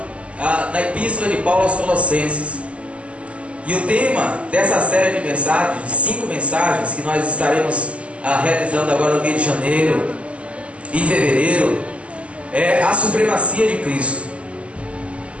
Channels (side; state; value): left; late; 0.060 ms